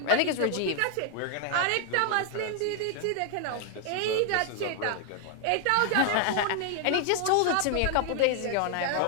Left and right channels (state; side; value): different; both; correlation 0.00